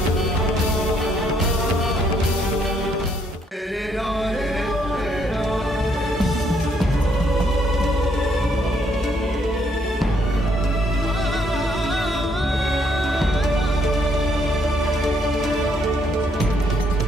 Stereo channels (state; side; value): normal; both; correlation 0.70